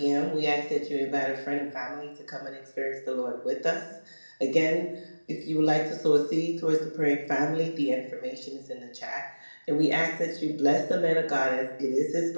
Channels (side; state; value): both; inverted; correlation -1.00